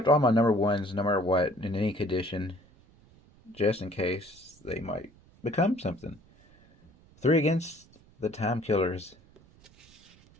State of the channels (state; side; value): noise; right; rumble, 27 dB below the sound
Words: all my number ones no matter what in any condition, just in case they might become something. 3 Against the Time Killers.